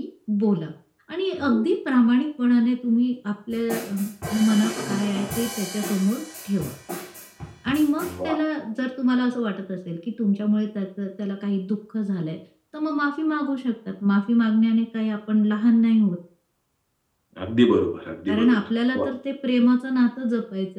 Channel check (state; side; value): identical; both; correlation 1.00